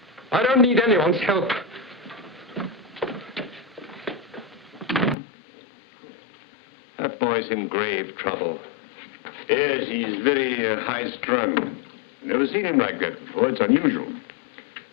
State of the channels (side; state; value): right; drops out; at 5.2 s